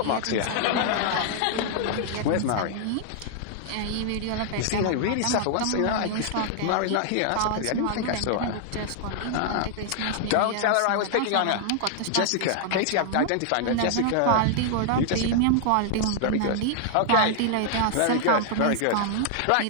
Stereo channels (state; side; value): different; both; correlation 0.00